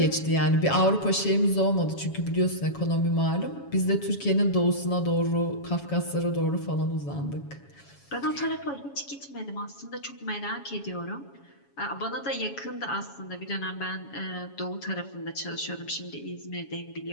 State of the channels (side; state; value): right; late; 7.2 ms